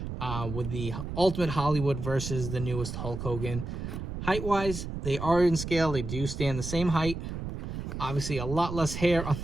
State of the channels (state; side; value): noise; right; rumble, 6 dB below the sound